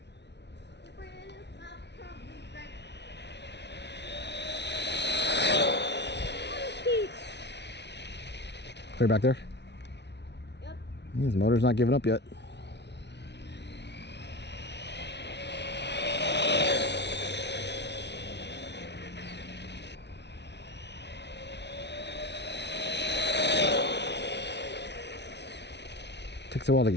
Clear back there? Yep. His motor's not giving up yet. Takes a while to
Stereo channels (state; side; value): late; right; 0.50 ms